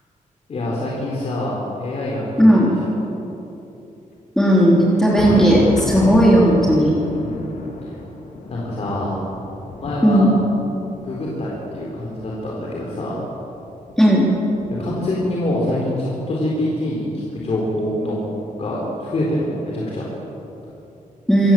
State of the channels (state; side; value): normal; both; correlation 0.76